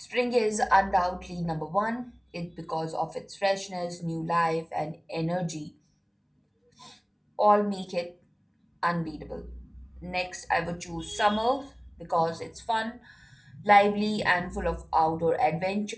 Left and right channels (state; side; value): identical; both; correlation 1.00